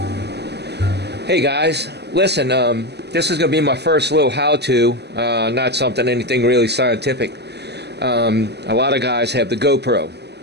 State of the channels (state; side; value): late; left; 0.49 ms